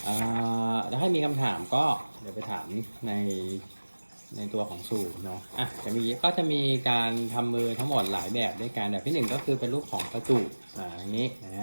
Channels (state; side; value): inverted; both; correlation -1.00